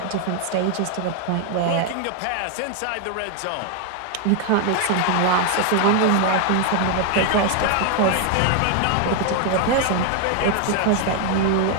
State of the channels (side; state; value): both; different; correlation 0.00